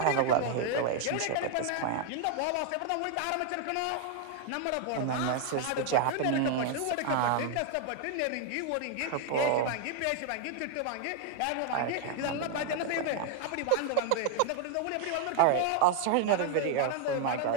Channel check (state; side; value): different; both; correlation 0.00